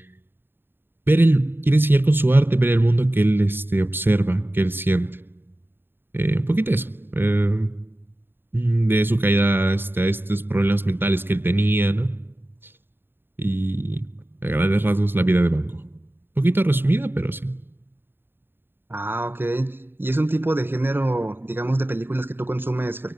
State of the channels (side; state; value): left; late; 0.10 ms